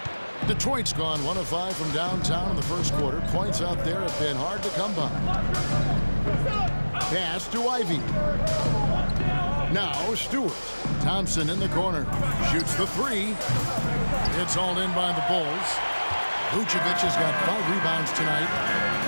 Detroit's gone 1 of 5 from downtown in the first quarter. Points out there have been hard to come by. Pass to Ivy. Now Stewart. Thompson in the corner. Shoots the 3. It's all in by the Bulls. Vucevic has got 5 rebounds tonight.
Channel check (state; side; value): inverted; both; correlation -1.00